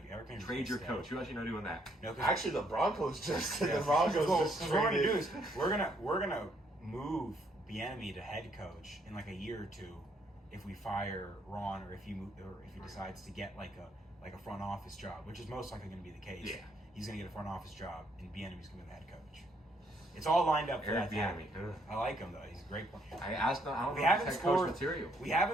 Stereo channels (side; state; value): both; normal; correlation 0.70